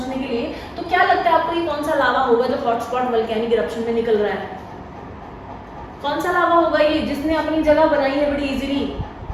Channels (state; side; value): identical; both; correlation 1.00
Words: के लिए। तो क्या लगता है आपको ये कौन सा लावा होगा जो हॉटस्पॉट वोल्केनिक इरप्शन में निकल रहा है? कौन सा लावा होगा ये जिसने अपनी जगह बनाई है बड़ी इजीली?